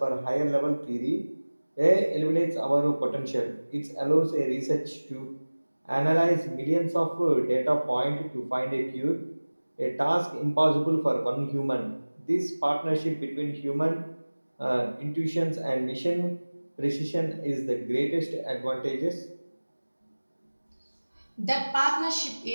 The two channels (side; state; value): both; inverted; correlation -1.00